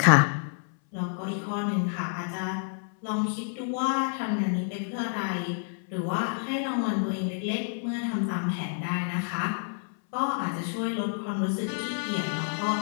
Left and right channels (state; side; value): silent; right; 59 dB below the other